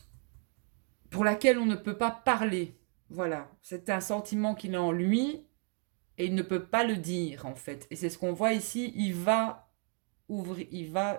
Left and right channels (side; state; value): left; quieter; 38.9 dB